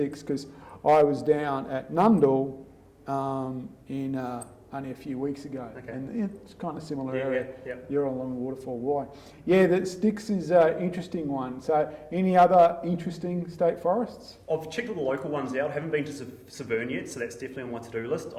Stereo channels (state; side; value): identical; both; correlation 1.00